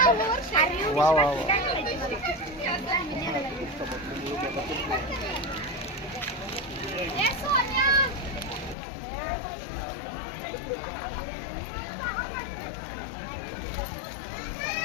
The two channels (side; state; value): right; drops out; at 8.8 s